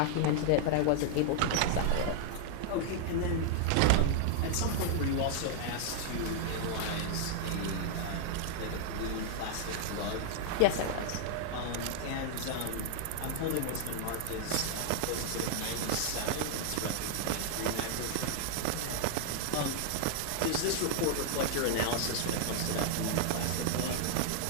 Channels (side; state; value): both; different; correlation 0.00